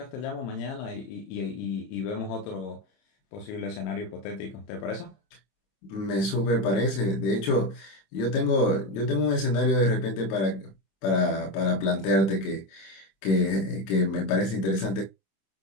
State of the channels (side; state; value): right; late; 26 ms